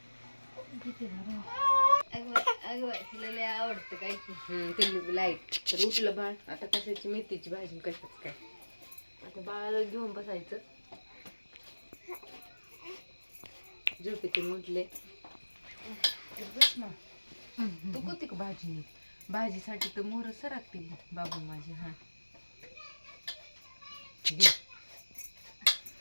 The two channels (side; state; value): both; inverted; correlation -1.00